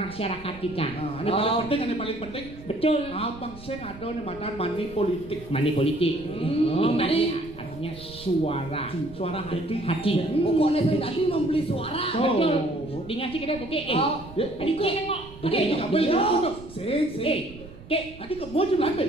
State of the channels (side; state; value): right; noise; rumble, 18 dB below the sound